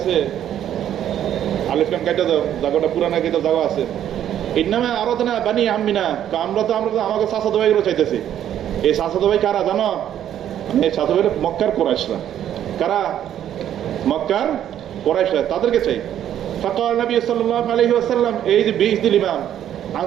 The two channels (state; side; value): quieter; left; 10.7 dB